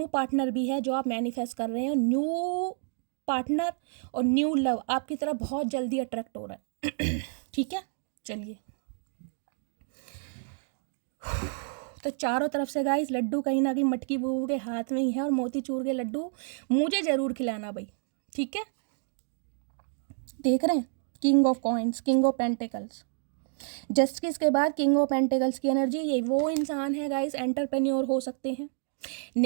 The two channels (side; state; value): left; silent; 58 dB below the other